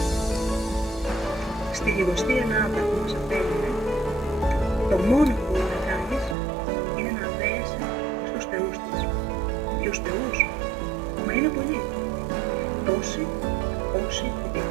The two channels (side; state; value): left; drops out; at 6.4 s